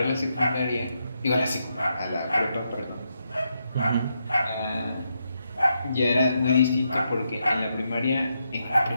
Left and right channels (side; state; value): both; inverted; correlation -0.82